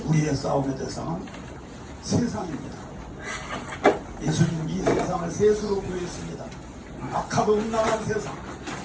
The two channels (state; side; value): identical; both; correlation 1.00